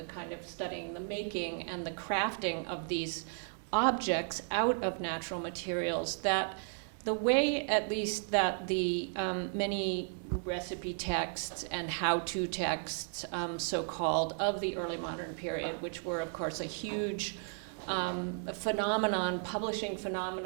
kind of studying the making and the crafting of these objects out of natural materials, that the way, at least, that the many recipe texts and how-to texts, so-called, of the early modern period, which were, of course, a huge publishing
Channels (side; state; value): left; silent; 55 dB below the other